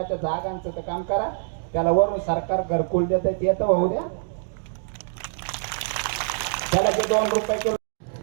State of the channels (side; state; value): left; silent; digital silence